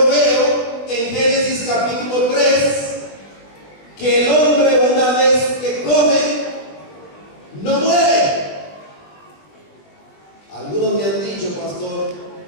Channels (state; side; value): late; right; 20 ms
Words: veo en Génesis capítulo 3 que el hombre, una vez que come, no muere. Algunos me han dicho, pastor,